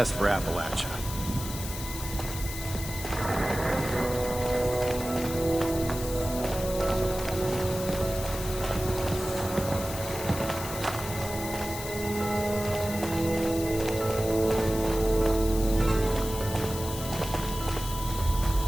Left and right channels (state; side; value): noise; left; hiss, 9 dB below the sound